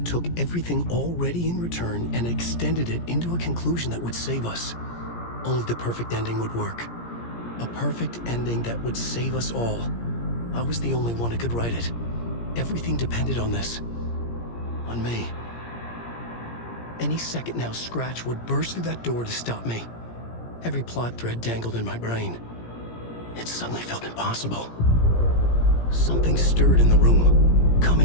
took everything already in Return and extended it into a conclusion that would save us. Only the perfect ending would work. A perfect ending that would save us all. I was the only one who could write it. Everything depended on this. On me. Any second now, Scratch would burst through that door to stop me. Every plot thread dangled in my brain. It suddenly felt impossible. Something stirred in the room,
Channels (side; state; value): right; late; 17 ms